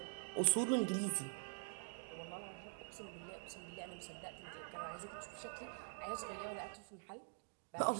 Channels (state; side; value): quieter; left; 33.9 dB